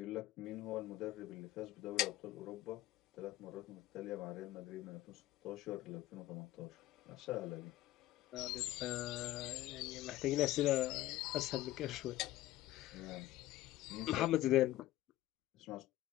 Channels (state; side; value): quieter; right; 15.5 dB